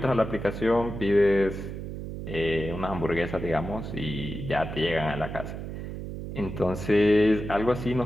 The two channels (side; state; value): right; noise; hum, 7 dB below the sound